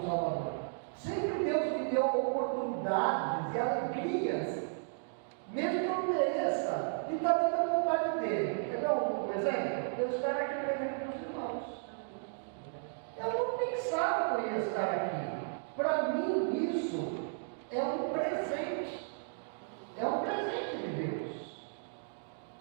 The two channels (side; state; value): left; silent; digital silence